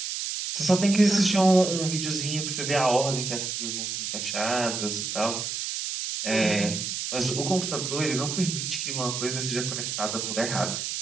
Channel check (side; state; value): right; noise; hiss, 3 dB below the sound